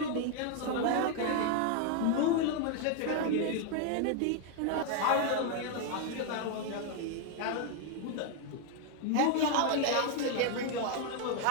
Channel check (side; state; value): both; different; correlation 0.00